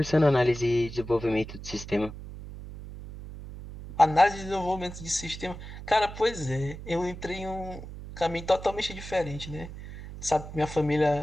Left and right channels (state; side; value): noise; right; hum, 12 dB below the sound